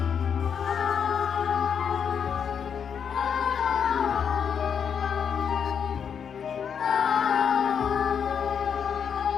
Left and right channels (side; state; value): right; quieter; 7.3 dB